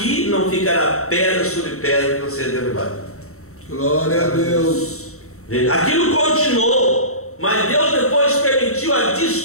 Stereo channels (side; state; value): right; late; 0.64 ms